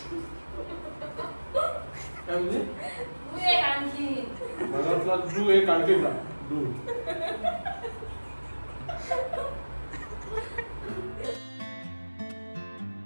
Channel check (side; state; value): both; inverted; correlation -1.00